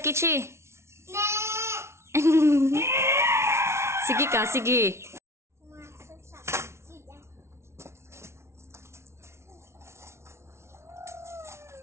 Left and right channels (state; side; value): late; left; 0.13 ms